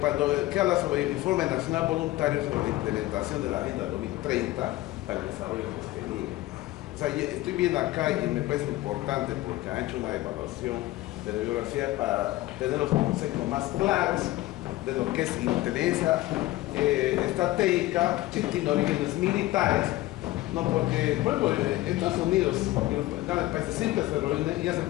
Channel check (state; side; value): quieter; right; 17.3 dB